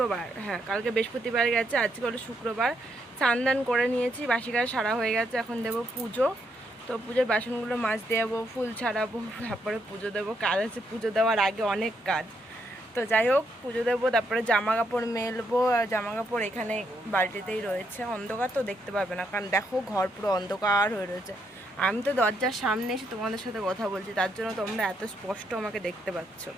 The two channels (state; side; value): normal; both; correlation 0.77